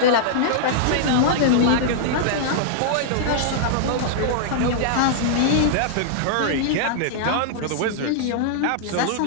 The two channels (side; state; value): both; different; correlation -0.02